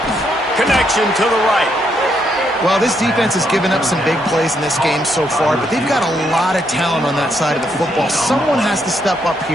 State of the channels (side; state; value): both; normal; correlation 0.76